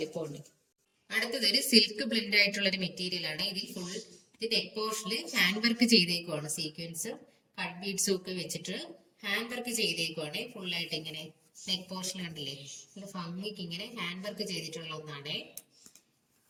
അടുത്തതൊരു സിൽക്ക് ബ്ലെൻഡ് ആയിട്ടുള്ള ഒരു മെറ്റീരിയൽ ആണ്. ഇതിൽ ഫുൾ ഇത് നെക്ക് പോർഷനിൽ ഹാൻഡ് വർക്ക് ചെയ്തേക്കുവാണ്. സീക്വൻസ് കട്ട് ബീഡ്സും ഒക്കെ വെച്ചിട്ട് ഹാൻഡ് വർക്ക് ചെയ്തേക്കുവാണ്. ഫുള്ളായിട്ട് ഇങ്ങനെ നെക്ക് പോർഷൻ കണ്ടില്ലേ നല്ല ഭംഗിക്ക് ഇങ്ങനെ ഹാൻഡ് വർക്ക് ചെയ്തിട്ടുള്ള ഒന്നാണ്.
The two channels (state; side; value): identical; both; correlation 1.00